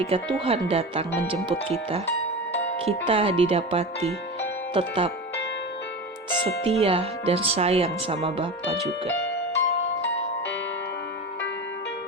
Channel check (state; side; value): normal; both; correlation 0.27